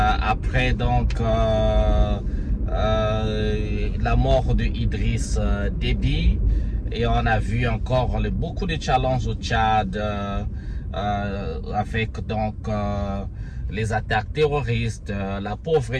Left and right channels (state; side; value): identical; both; correlation 1.00